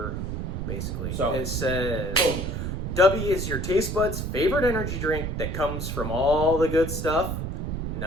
basically. So it says, boom. "DUBBY is your taste buds' favorite energy drink that comes from all the good stuff,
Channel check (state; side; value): noise; right; rumble, 3 dB below the sound